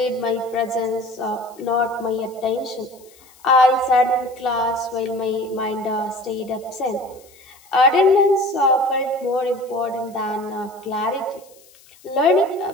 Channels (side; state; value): left; noise; hiss, 27 dB below the sound